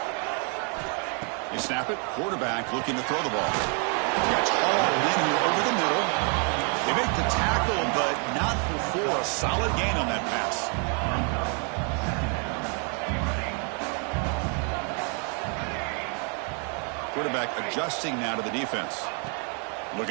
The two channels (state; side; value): quieter; left; 38.7 dB